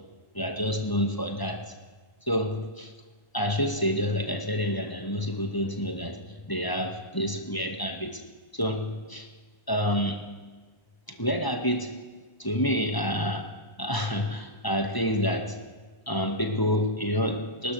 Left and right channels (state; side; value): late; right; 1.0 ms